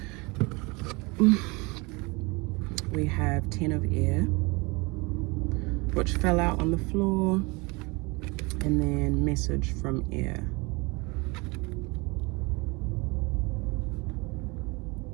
We have 10 of air, which fell out on the floor, and then message from air.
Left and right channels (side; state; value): left; quieter; 26.6 dB